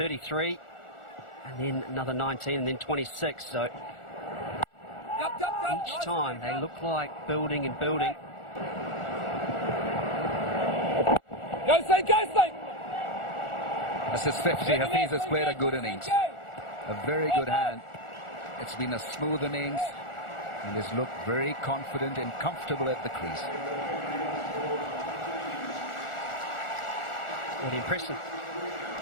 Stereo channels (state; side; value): late; right; 1.4 ms